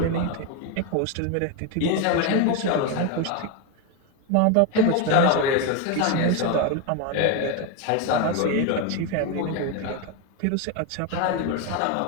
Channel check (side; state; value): both; different; correlation 0.02